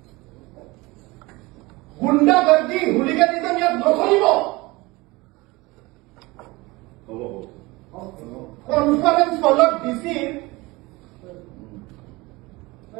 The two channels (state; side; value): quieter; left; 22.6 dB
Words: গুণ্ডাগৰ্দি হুলিগানিজম ইয়াত নচলিব কনফাৰেন্স হলত ডিচিৰ